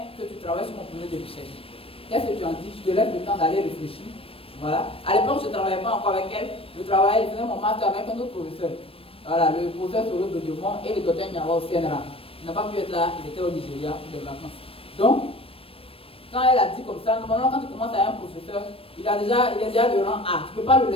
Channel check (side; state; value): right; late; 0.27 ms